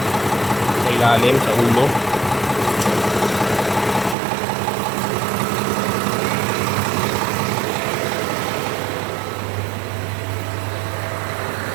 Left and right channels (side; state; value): left; drops out; at 4.2 s